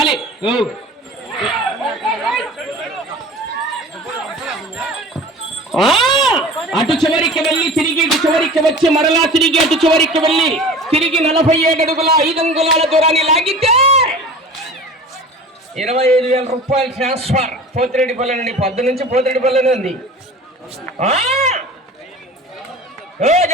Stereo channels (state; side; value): normal; both; correlation 0.39